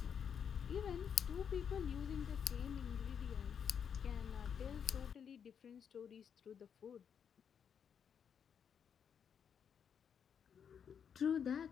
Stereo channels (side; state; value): right; quieter; 7.6 dB